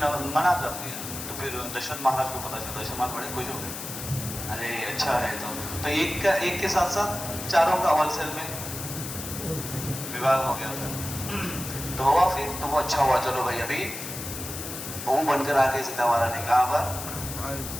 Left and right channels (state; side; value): noise; left; hiss, 8 dB below the sound